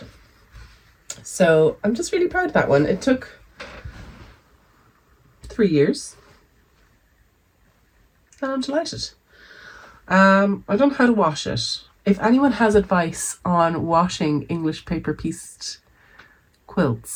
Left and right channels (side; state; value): both; identical; correlation 1.00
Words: So I'm just really proud of that one. It took 3 years. And I'm delighted. I don't know how to wash it. If anyone has advice on washing English paper pieced